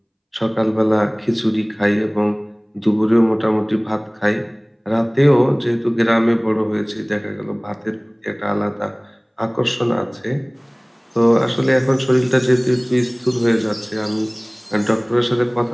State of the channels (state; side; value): identical; both; correlation 1.00